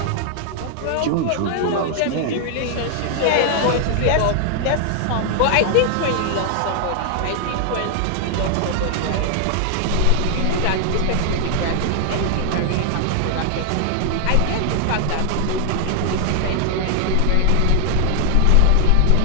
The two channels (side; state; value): both; different; correlation 0.00